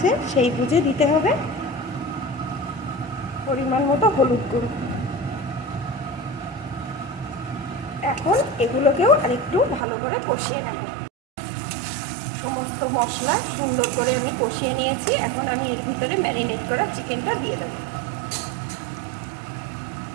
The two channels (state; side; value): drops out; left; at 9.9 s